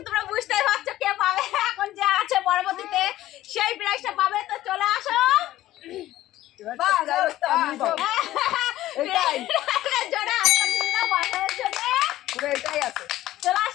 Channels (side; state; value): right; quieter; 14.8 dB